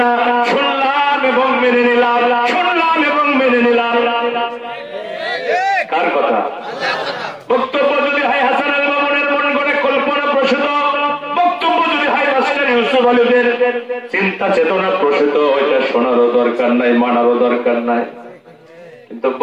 শুনলাম এবং মেনে নিলাম, শুনলাম এবং মেনে নিলাম। কার কথা? বক্তব্য যদি হয় হাসান আল মামুনের মন গড়ে কল্পনা প্রসূত, বক্তব্য যদি হয় মাস্টার ইউসুফ আলীদের চিন্তা চেতনা প্রসূত, ওইটা শোনারও দরকার নাই, মানারও দরকার নাই। কিন্তু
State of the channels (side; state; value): both; identical; correlation 1.00